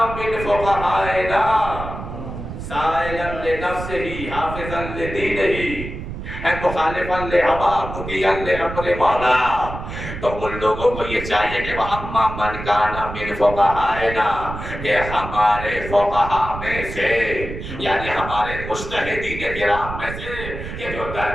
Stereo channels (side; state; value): right; noise; rumble, 8 dB below the sound